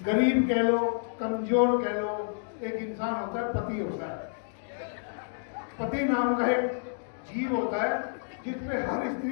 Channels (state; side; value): silent; right; digital silence